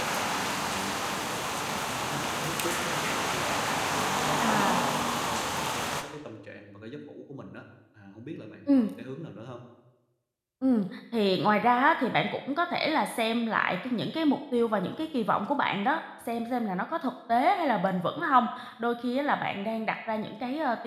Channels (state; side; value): identical; both; correlation 1.00